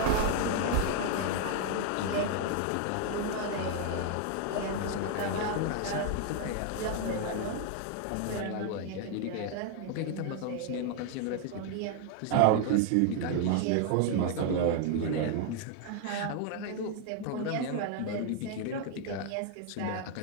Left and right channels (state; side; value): different; both; correlation 0.00